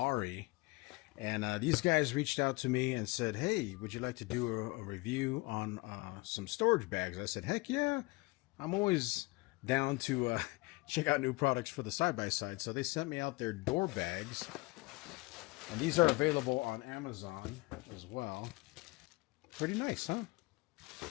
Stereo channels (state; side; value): quieter; right; 24.1 dB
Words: and these guys reached out to me and said, hey, would you like to do a review on some storage bags? I said, heck yeah, I'm always down to check out new products for the side-by-side. So they sent me out their door bags. And these are available on Amazon as well. Pretty nice, huh?